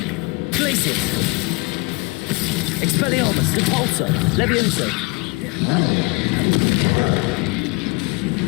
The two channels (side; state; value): right; quieter; 28.6 dB